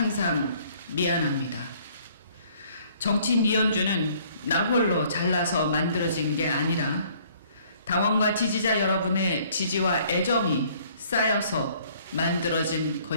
미안합니다. 정치인 이현주는 나 홀로 잘나서 만들어진 게 아니라 당원과 지지자 여러분의 지지와 애정이 쌓여서 만들어진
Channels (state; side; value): inverted; both; correlation -0.59